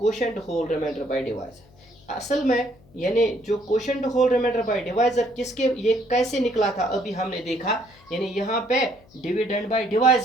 whole remainder by divisor. असल में यानी जो quotient whole remainder by divisor किसके, ये कैसे निकला था अभी हमने देखा, यानी यहाँ पे डिविडेंड बाय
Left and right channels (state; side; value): noise; left; hum, 28 dB below the sound